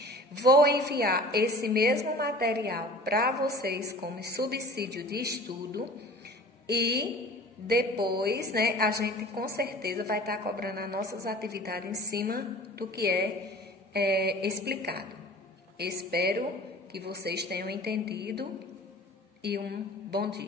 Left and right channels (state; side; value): normal; both; correlation 0.43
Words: Vou enviar esse mesmo material para vocês como subsídio de estudo e depois, né, a gente com certeza vai estar cobrando as nossas atividades em cima do que é explicado. Espero que vocês tenham entendido e um bom